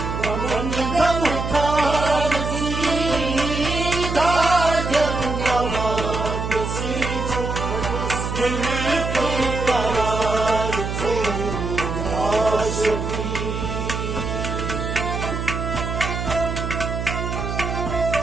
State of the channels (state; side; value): noise; right; hum, 4 dB below the sound